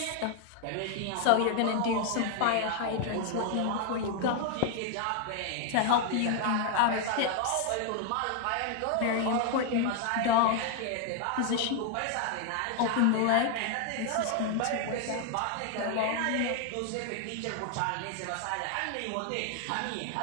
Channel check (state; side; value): different; both; correlation 0.00